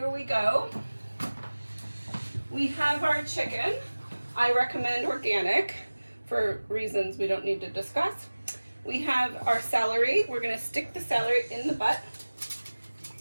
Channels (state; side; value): inverted; both; correlation -1.00